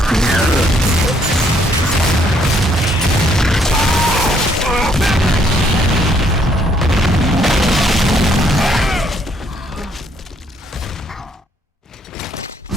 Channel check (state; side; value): normal; both; correlation 0.68